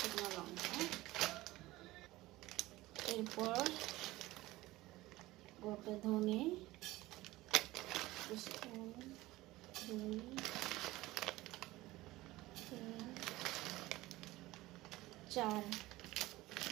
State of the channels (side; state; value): left; quieter; 18.4 dB